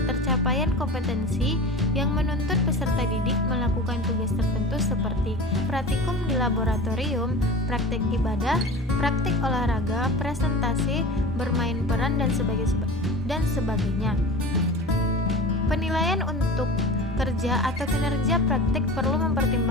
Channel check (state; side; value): normal; both; correlation 0.35